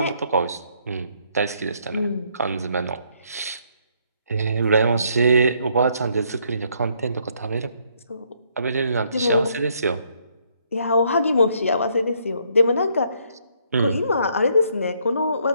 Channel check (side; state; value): both; inverted; correlation -0.69